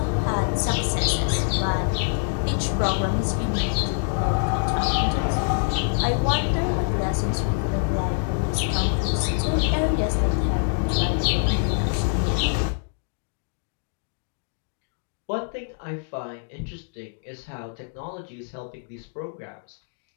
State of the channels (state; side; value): silent; right; digital silence